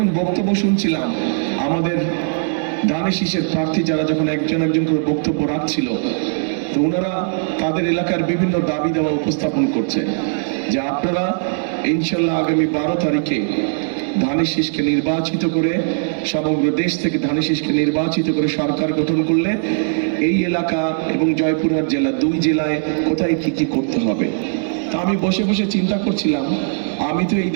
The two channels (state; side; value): silent; left; 65 dB below the other